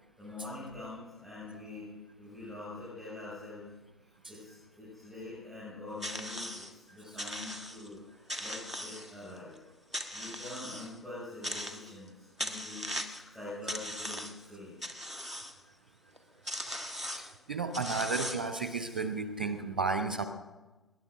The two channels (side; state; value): both; normal; correlation 0.30